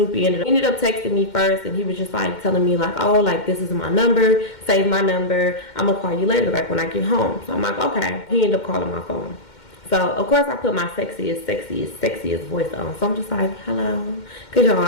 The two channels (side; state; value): right; late; 2.1 ms